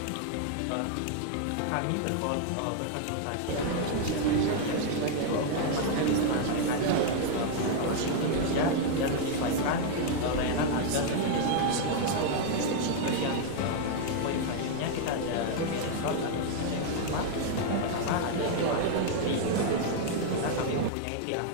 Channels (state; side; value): different; both; correlation 0.00